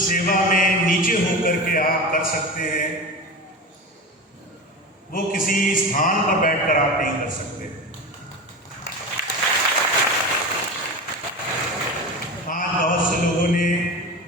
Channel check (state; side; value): normal; both; correlation 0.27